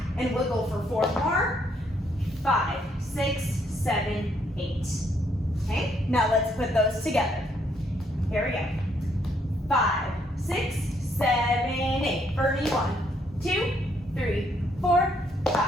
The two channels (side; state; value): both; normal; correlation 0.71